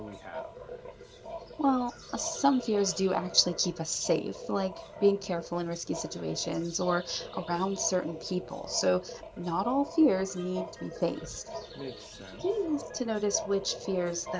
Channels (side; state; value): both; identical; correlation 1.00